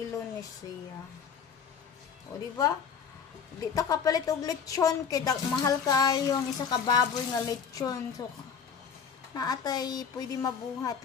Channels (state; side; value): quieter; right; 6.7 dB